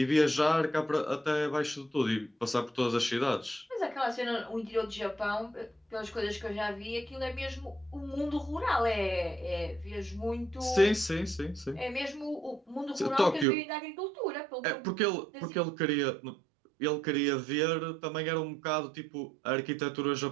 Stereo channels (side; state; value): left; drops out; at 13.5 s